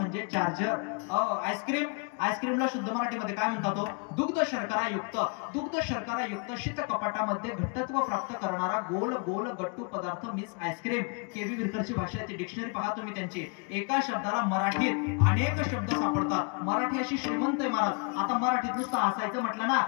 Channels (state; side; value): quieter; right; 35.6 dB